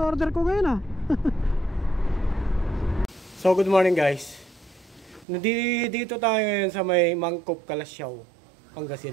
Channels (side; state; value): left; drops out; at 5.2 s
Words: ko ngayon ah. So good morning guys. Dito tayo ngayon sa may Mangkop, Kalasyaw,